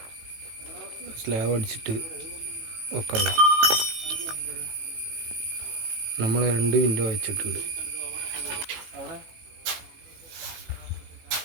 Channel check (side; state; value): left; late; 18 ms